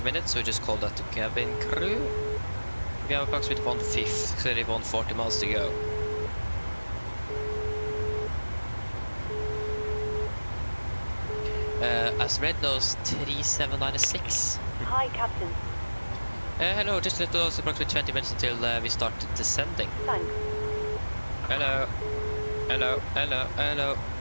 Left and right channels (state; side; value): inverted; both; correlation -1.00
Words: minutes, so we just call that to cabin crew. We have approximately 140 miles to go. As Red knows, 3796. Hi, Captain. Hello, just let us approximately 20 minutes until we start descending. Thanks. Hello. Hello, hello, hello.